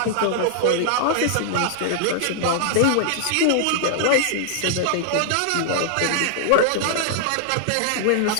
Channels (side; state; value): both; different; correlation -0.01